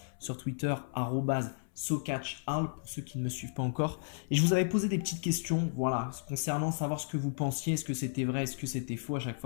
sur Twitter, @SoCatchHal, pour ceux qui ne me suivent pas encore. Et je vous avais posé des petites questions, voilà, concernant savoir ce que vous pensiez, est-ce que c'était vrai, est-ce que c'était faux. À chaque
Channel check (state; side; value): silent; right; 56 dB below the other